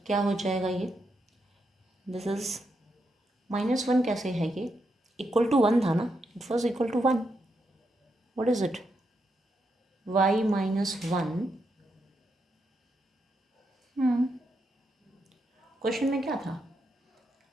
क्या हो जाएगा, ये दिस इज -1 कैसे है, ये इक्वल टू 1 था ना, it was equal to 1, what is it, y - 1। Question में क्या था,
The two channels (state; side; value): normal; both; correlation 0.82